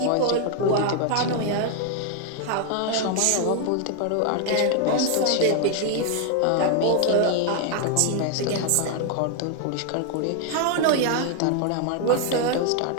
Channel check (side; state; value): both; different; correlation 0.00